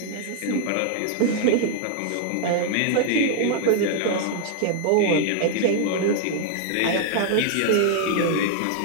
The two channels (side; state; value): both; different; correlation 0.00